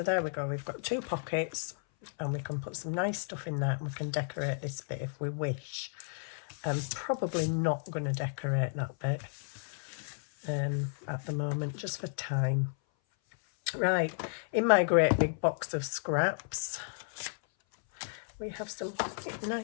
there we go. We've got 2 pockets, and we can put some nice stuff in that, and we can decorate this bit if we wish. I'm probably not going to decorate that bit at the moment, just for time. Right, in my great big box of scraps, we have some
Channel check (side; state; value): right; silent; 56 dB below the other